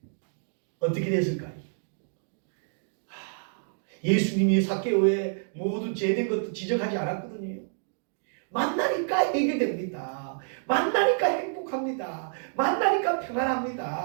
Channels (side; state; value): left; silent; digital silence